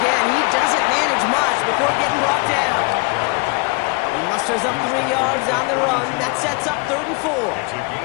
he doesn't manage much before getting brought down. He musters up 3 yards on the run. That sets up 3rd and 4. It's a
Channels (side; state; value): right; quieter; 29.7 dB